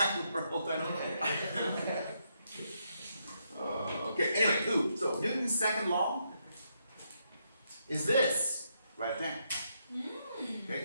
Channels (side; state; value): both; inverted; correlation -0.78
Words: world, I don't know. Okay, anyway, so Newton's second law is this, right there.